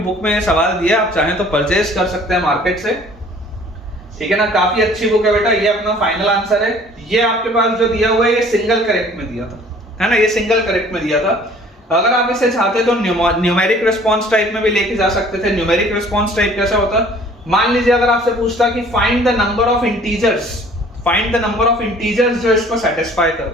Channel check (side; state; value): both; normal; correlation 0.53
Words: में सवाल दिया, आप चाहें तो परचेज कर सकते हैं मार्केट से, ठीक है ना। काफी अच्छी बुक है बेटा, ये अपना फाइनल आंसर है। ये आपके पास जो दिया हुआ है ये सिंगल करेक्ट में दिया था, है ना, ये सिंगल करेक्ट में दिया था। अगर आप इसे चाहते तो न्यूमेरिक रिस्पांस टाइप में भी लेके जा सकते थे। न्यूमेरिक रिस्पांस टाइप कैसा होता, मान लीजिए अगर आपसे पूछता कि find the number of integers, find the number of integers जो इसको सेटिस्फाई